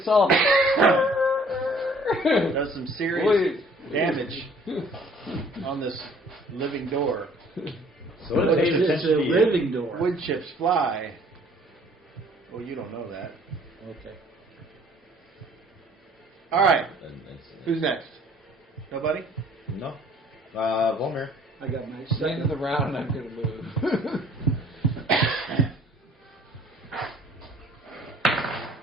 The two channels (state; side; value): normal; both; correlation 0.56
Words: does some serious Wait. damage on this living door. So But it pays it's attention a to you. living door. Wood chips fly. Well, you don't know that. Okay. All right. And it's- Who's next? Nobody? No. Volmir. I got my At the end second. of the round, I'm going to move.